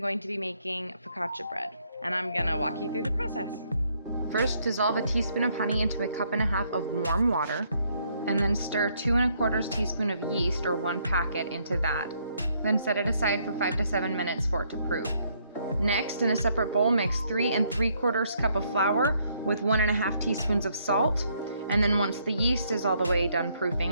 to be making focaccia bread, and I'm gonna walk you through the process. First, dissolve a teaspoon of honey into a cup and a half of warm water, and then stir 2 1/4 teaspoon of yeast or 1 packet into that. Then set it aside for 5 to 7 minutes for it to proof. Next, in a separate bowl, mix 3 3/4 cup of flour with 1 1/2 teaspoons of salt. And then once the yeast is all the way done proofing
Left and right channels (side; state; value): both; inverted; correlation -0.70